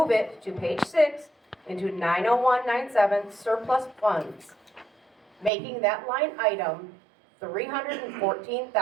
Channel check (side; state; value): left; drops out; at 5.5 s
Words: it to page 6 into 90197 surplus funds, making that line item